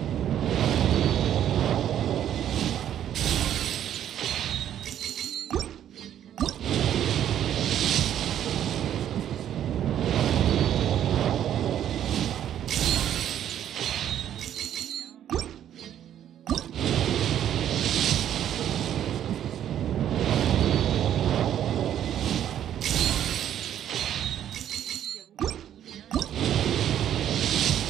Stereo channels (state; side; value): quieter; left; 10.6 dB